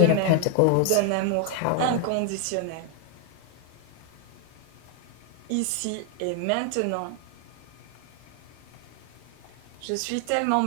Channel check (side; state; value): both; different; correlation 0.00